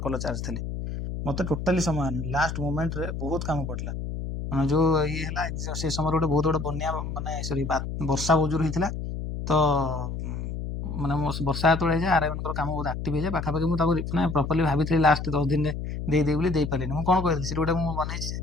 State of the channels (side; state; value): left; noise; hum, 5 dB below the sound